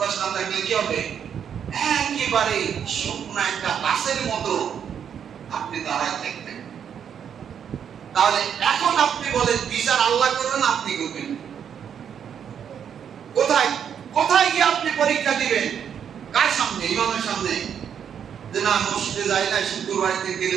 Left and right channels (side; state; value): left; quieter; 8.2 dB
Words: না থাকলে কি হবে? একেবারে শুকনো একটা গাছের মতো আপনি দাঁড়ায় থাকবেন। তাহলে এখন আপনি বলেন বিচার আল্লাহ করবেন, আপনি করবেন কোথায়? কোথায় গিয়ে আপনি পরীক্ষা দিবেন? কার সামনে? ইমামের সামনে? যে না মসজিদে যাই না, শুক্রবারে গেলে